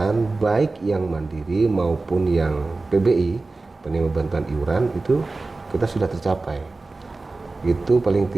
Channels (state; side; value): quieter; left; 3.5 dB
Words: baik yang mandiri maupun yang PBI, penerima bantuan iuran, itu kita sudah tercapai. Itu paling